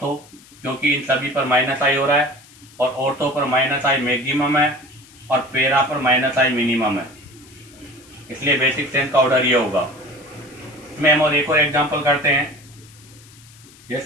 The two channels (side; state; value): left; noise; hiss, 24 dB below the sound